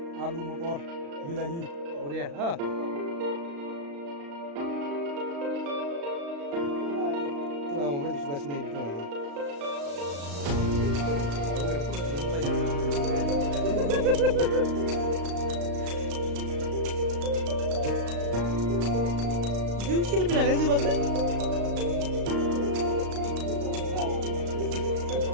alu motor bilahi. Oh dia, दाबायदि सुगासिनो बेखौ माने ओरैनो फट' जिउ सेलफि लानाय जोबाखै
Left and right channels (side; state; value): left; late; 35 ms